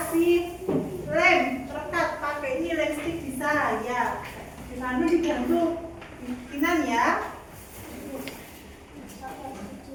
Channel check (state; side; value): identical; both; correlation 1.00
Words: lem terkat, pakai ini lem stick bisa ya. Dibantu dibantu bikinan ya.